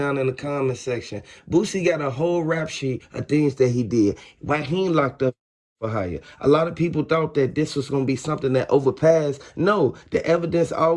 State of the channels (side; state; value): both; identical; correlation 1.00